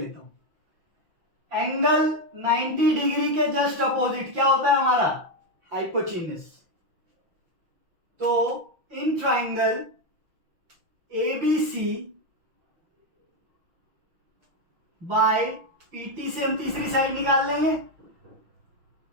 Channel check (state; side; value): late; left; 6.0 ms